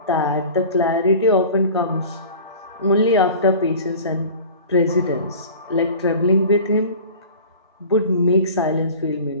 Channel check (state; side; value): inverted; both; correlation -0.40